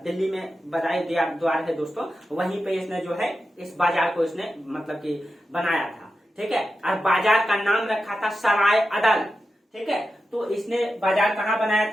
दिल्ली में बदायूं द्वार है दोस्तों, वहीं पे इसने जो है इस बाजार को इसने मतलब कि बनाया था, ठीक है। और बाजार का नाम रखा था सराय अदल, ठीक है। तो इसने बाजार कहाँ बनाया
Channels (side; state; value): both; normal; correlation 0.91